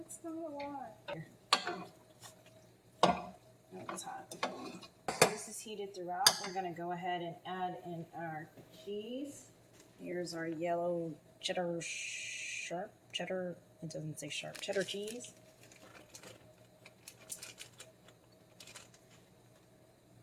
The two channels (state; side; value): identical; both; correlation 1.00